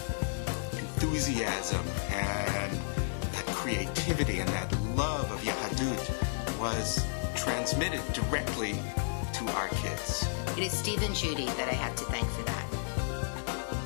enthusiasm and that creativity and that love of Yahadut was transmitted directly to our kids. It is Steve and Judy that I have to thank for that.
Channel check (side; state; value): right; silent; digital silence